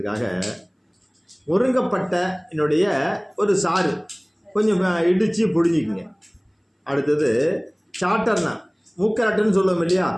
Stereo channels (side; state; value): both; identical; correlation 1.00